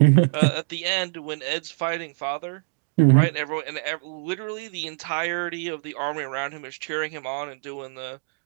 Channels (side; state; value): left; silent; 62 dB below the other